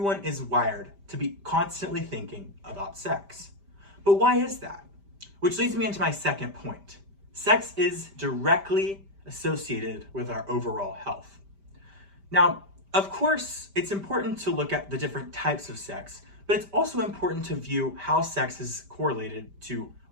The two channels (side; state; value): left; late; 5.1 ms